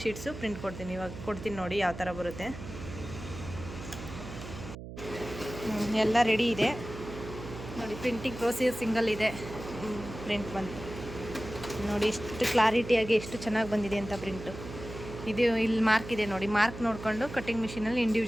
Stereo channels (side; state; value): right; noise; hum, 11 dB below the sound